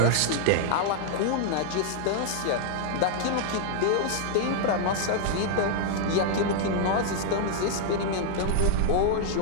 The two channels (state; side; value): different; both; correlation -0.01